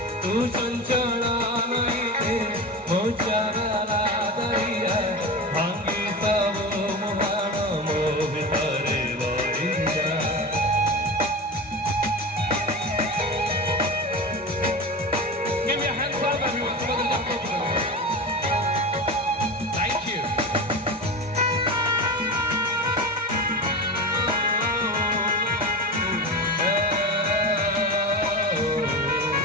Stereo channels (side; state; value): both; normal; correlation 0.26